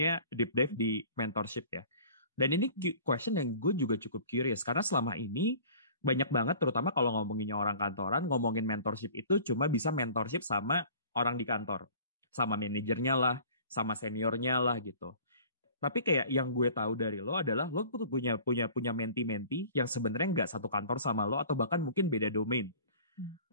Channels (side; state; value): both; inverted; correlation -0.47